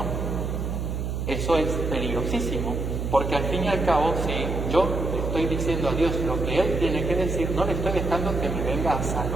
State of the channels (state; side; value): noise; right; hum, 2 dB below the sound